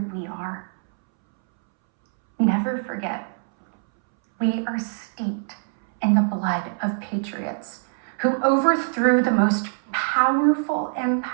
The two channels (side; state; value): left; silent; 63 dB below the other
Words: we are. Never forget, we are steeped in the blood of patriots who overthrew the most powerful